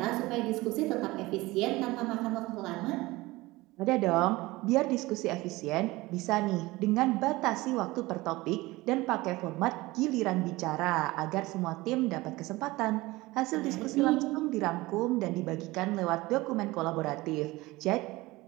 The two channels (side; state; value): left; quieter; 20.4 dB